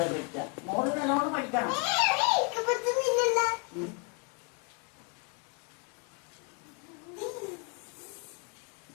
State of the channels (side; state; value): right; quieter; 32.6 dB